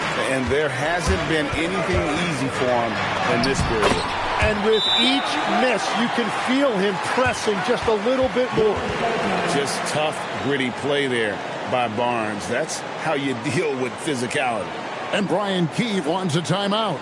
And there hasn't been anything easy for him in this period. And with each miss, you can feel him pressing just a little bit more. Just tough, gritty play there. by Barnes. That's how you deal with physicality. And Brian Keefe wants a timeout.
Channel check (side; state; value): both; identical; correlation 1.00